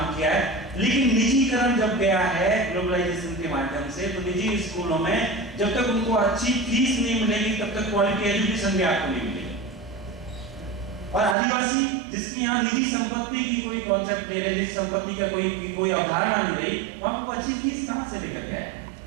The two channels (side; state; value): left; drops out; at 11.4 s